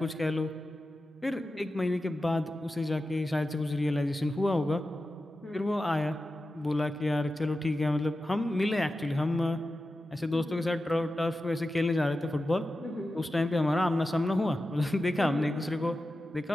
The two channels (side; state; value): both; normal; correlation 0.92